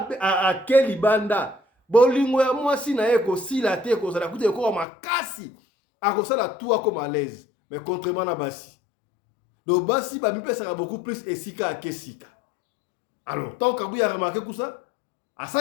akeli banda bolingo ya mwasi na ye ko sila te ko sala kute ko makasi akosala tout ako malaise mais contrairement na basi do basi ba mi pesa beaucoup plus esika akesika alors tant Kabuya a remarqué tout ça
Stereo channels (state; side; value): drops out; right; at 4.9 s